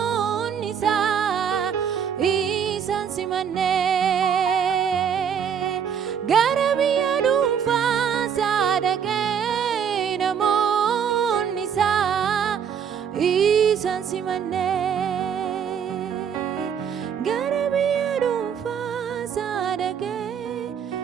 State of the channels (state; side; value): quieter; left; 7.7 dB